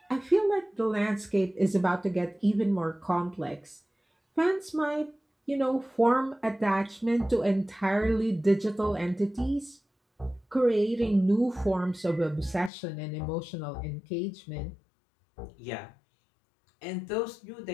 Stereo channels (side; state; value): right; drops out; at 12.7 s